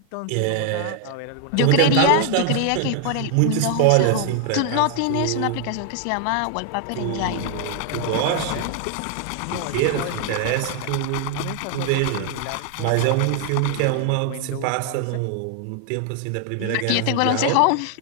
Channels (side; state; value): both; different; correlation 0.00